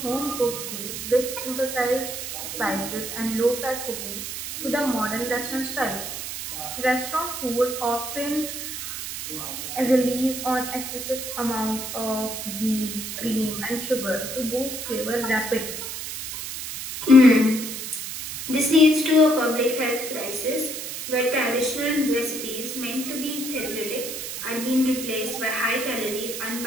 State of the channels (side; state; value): right; noise; hiss, 6 dB below the sound